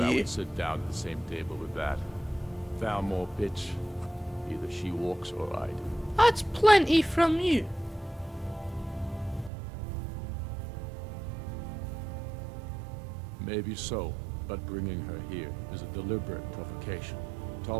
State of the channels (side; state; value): left; drops out; at 9.5 s